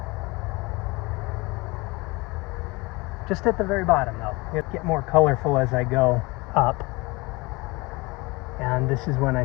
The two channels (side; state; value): right; quieter; 24.4 dB